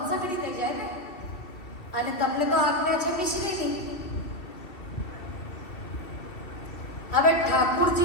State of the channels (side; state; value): right; late; 2.3 ms